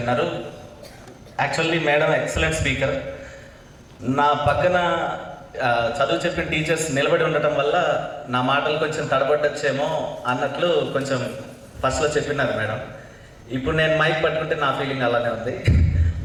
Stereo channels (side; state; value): both; identical; correlation 1.00